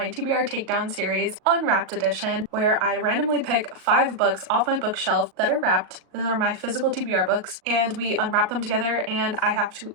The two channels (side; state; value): left; late; 37 ms